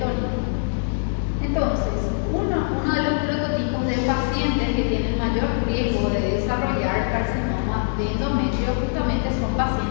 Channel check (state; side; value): silent; right; digital silence